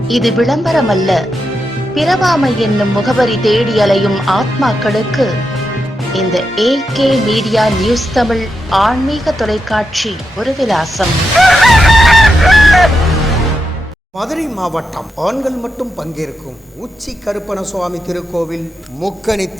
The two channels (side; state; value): both; normal; correlation 0.86